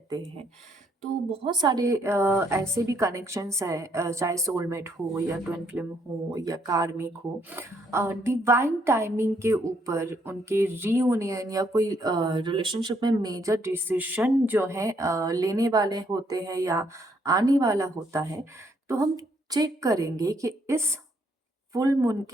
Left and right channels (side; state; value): both; normal; correlation 0.71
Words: हैं। तो बहुत सारे ऐसे भी कनेक्शंस है, चाहे सोलमेट हो या ट्विन फ्लेम हो या कार्मिक हो। डिवाइन टाइमिंग के ऊपर उनके रीयूनियन या कोई रिलेशनशिप में मेजर डिसीजन जो है लेने वाले होते हैं या आने वाला होता है। तो हम चेक करेंगे कि इस फुल मून